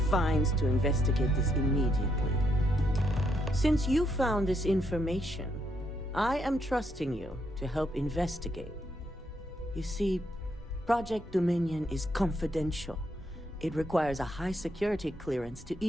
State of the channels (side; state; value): both; normal; correlation 0.76